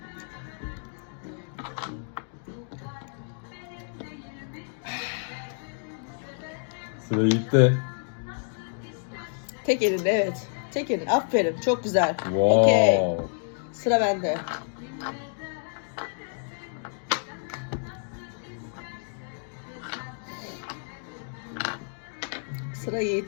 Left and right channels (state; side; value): silent; right; digital silence